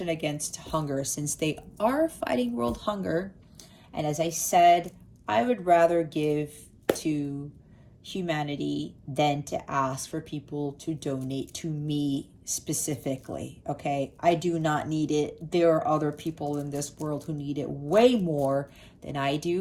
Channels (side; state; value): both; identical; correlation 1.00